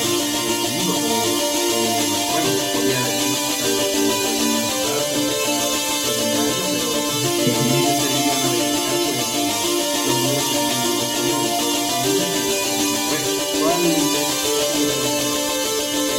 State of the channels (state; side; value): identical; both; correlation 1.00